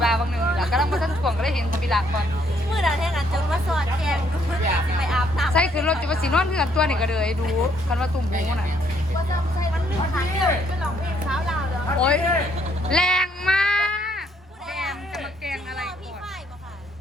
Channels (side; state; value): both; normal; correlation 0.69